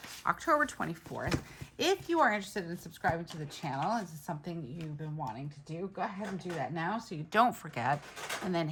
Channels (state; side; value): identical; both; correlation 1.00